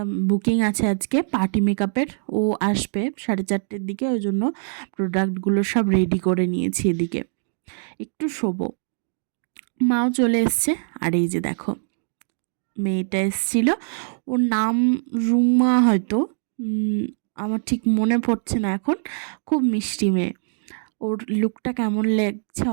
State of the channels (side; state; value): left; silent; digital silence